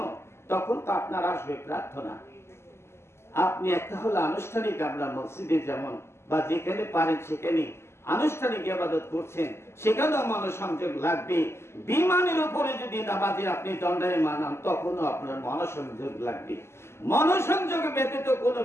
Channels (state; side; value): late; right; 0.12 ms